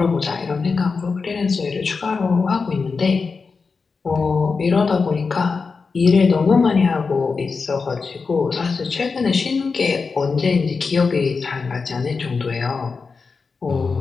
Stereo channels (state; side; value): quieter; right; 4.7 dB